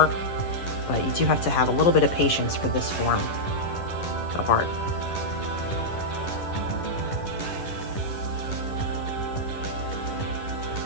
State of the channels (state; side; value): late; right; 11 ms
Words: But you do have to have a little bit of patience for this form of art.